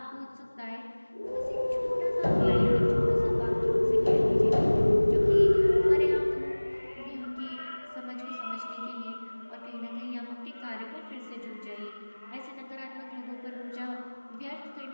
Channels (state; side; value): inverted; both; correlation -1.00